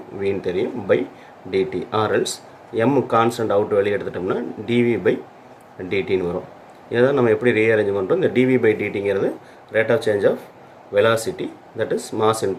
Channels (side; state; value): both; identical; correlation 1.00